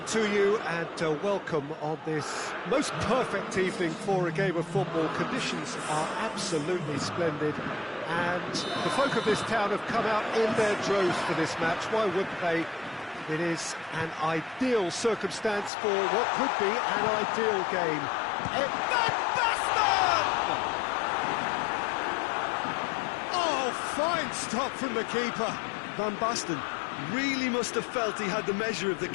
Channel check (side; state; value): right; drops out; at 15.7 s